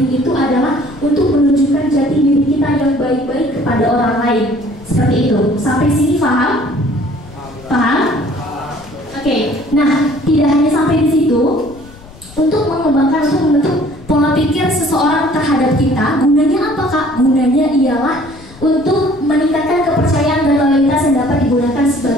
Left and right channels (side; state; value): left; noise; rumble, 21 dB below the sound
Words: itu adalah untuk menunjukkan jati diri kita yang baik-baik kepada orang lain. Seperti itu. Sampai sini paham? Paham? Oke. Nah, tidak hanya sampai di situ. Untuk mengembangkan, untuk membentuk pola pikir seseorang terhadap kita, gunanya apa Kak? Gunanya ialah untuk meningkatkan kepercayaan dan loyalitas yang dapat digunakan